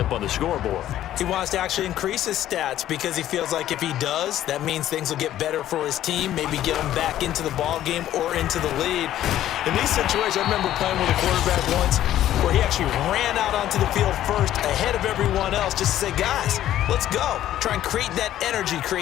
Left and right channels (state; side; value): quieter; right; 12.6 dB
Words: on the scoreboard. He wants to actually increase his stats because he feels like if he does, that means things will get better for his team, maybe get him back into the ball game or into the lead. In these situations, I remember playing with a quarterback once where he actually ran out onto the field first ahead of everyone else just to say, guys, let's go. Try and create that energy,